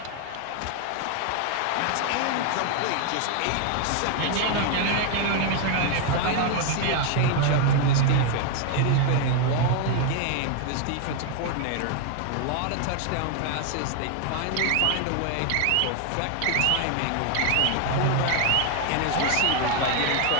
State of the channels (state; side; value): different; both; correlation 0.01